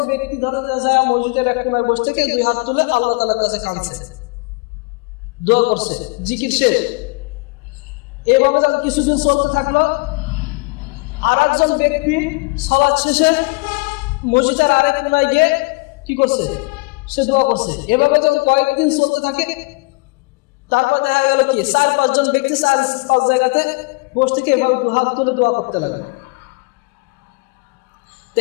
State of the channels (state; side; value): quieter; right; 27.1 dB